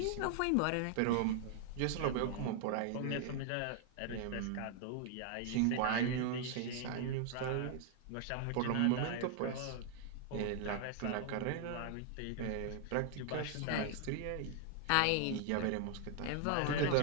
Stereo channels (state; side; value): different; both; correlation 0.00